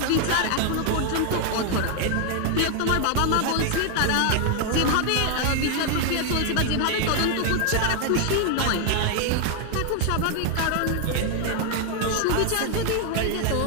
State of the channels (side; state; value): both; different; correlation 0.00